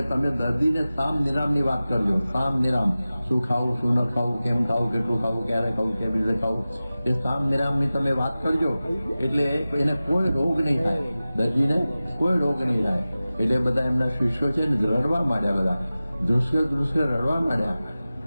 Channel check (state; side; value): inverted; both; correlation -0.96